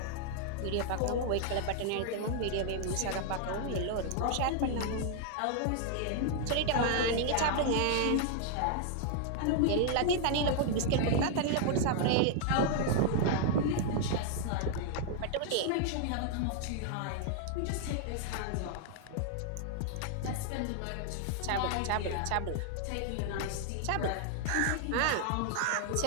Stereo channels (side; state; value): both; different; correlation 0.00